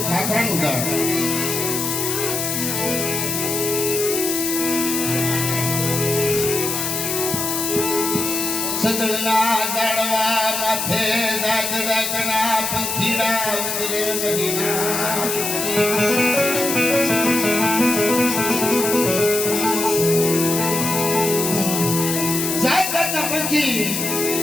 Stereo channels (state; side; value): noise; left; hiss, 2 dB below the sound